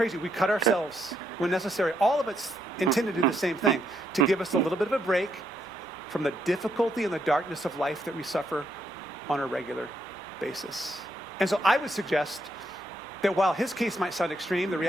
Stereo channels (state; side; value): normal; both; correlation 0.76